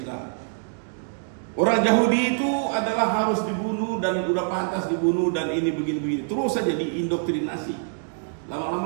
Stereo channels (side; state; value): left; silent; digital silence